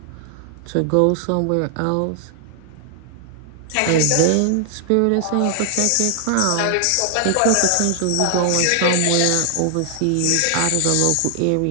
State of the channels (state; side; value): different; both; correlation 0.00